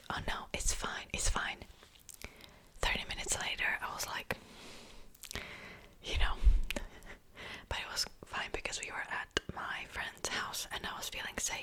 oh no, it's fine, it's fine. 30 minutes later I was like, you know, but it was fine because we were at my friend's house and I was feeling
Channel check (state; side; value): identical; both; correlation 1.00